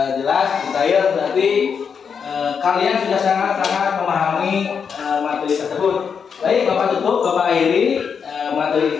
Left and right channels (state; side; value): quieter; right; 6.5 dB